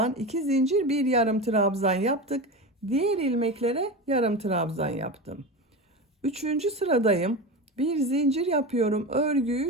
2 zincir, bir yarım trabzan yaptık. Diğer ilmeklere yarım trabzan yaptım. Üçüncü sıradayım. Bir zincir yapıyorum.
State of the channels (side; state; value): both; normal; correlation 0.24